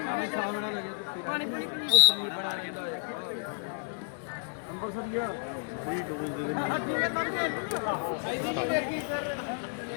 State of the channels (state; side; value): silent; right; 55 dB below the other